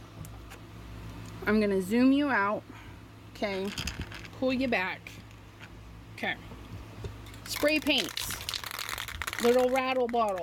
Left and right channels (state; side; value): identical; both; correlation 1.00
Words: I'm going to zoom you out. Okay. Pull you back. Okay. Spray paints. Little rattle